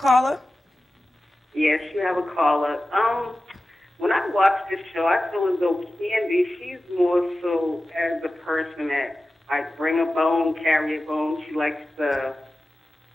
Yes, you have a caller. When I watch this show, I feel as though Candy, she's more so as the person that like bring a bone, carry a bone. She likes to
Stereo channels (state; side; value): normal; both; correlation 0.94